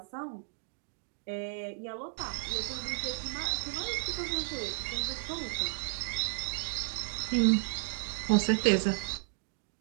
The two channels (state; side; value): silent; left; digital silence